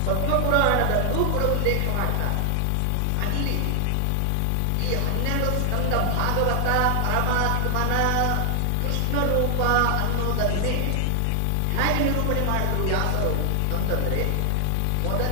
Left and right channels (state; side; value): different; both; correlation 0.00